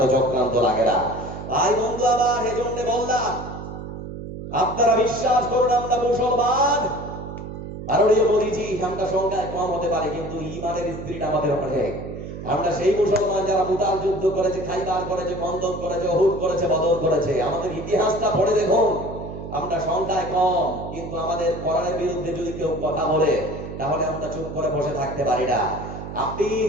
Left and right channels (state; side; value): noise; right; hum, 9 dB below the sound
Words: চক্রান্ত লাগে না। ভাই বন্ধু আমার, এজন্য বললাম আপনারা বিশ্বাস করুন আমরা মুসলমান। মাননীয় মোদীজি, আমরা সংখ্যায় কম হতে পারে কিন্তু ঈমানের স্পিরিট আমাদের অনেক। আমরা সেই মুসলমান যারা মুতাল যুদ্ধ করেছে, খাইবার করেছে, খন্দক করেছে, উহুদ করেছে, বদর করেছে। আমাদের ইতিহাসটা পড়ে দেখুন, আমরা সংখ্যায় কম, কিন্তু আমাদের কোরআনের বিরুদ্ধে যদি কেউ কথা বলে তাহলে আমরা চুপ করে বসে থাকতে পারি না। আপনি